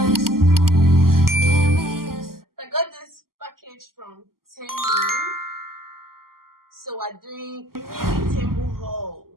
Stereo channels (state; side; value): late; left; 0.92 ms